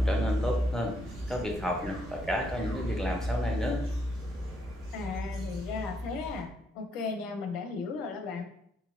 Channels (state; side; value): normal; both; correlation 0.75